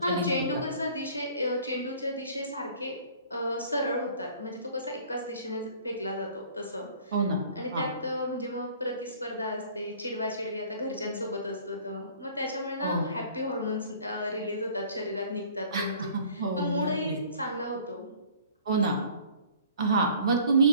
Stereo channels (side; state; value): both; inverted; correlation -0.51